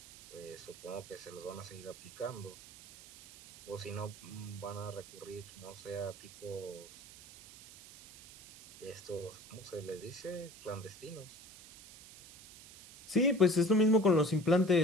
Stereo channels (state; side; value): noise; right; hiss, 18 dB below the sound